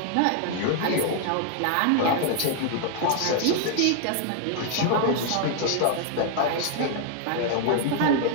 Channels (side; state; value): both; different; correlation 0.00